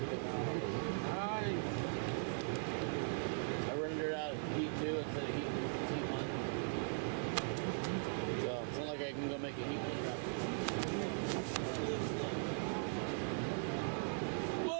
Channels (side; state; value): left; silent; digital silence